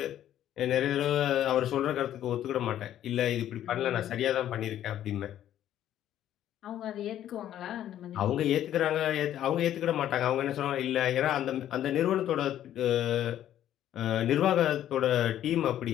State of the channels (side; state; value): right; quieter; 11.6 dB